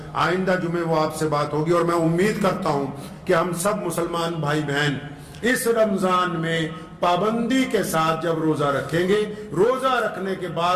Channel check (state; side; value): identical; both; correlation 1.00